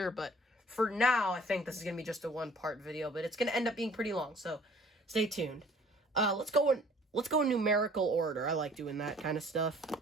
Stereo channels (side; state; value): both; normal; correlation 0.53